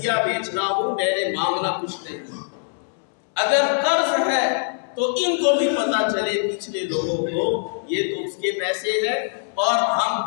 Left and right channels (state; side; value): silent; right; 64 dB below the other